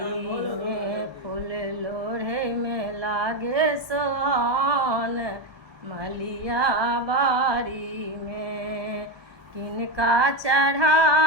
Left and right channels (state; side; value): late; left; 1.4 ms